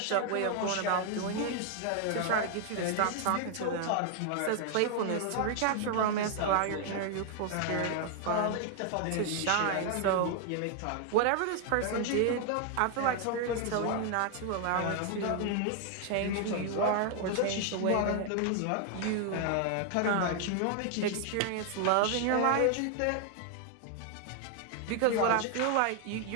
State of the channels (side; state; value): both; different; correlation 0.00